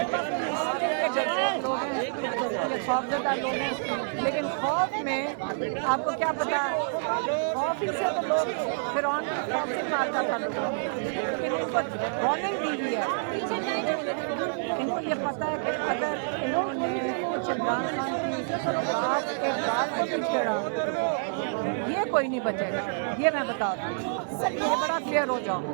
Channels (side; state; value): left; silent; 59 dB below the other